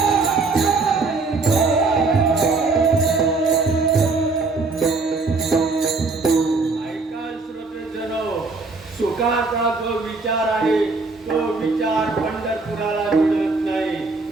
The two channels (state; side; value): quieter; left; 3.8 dB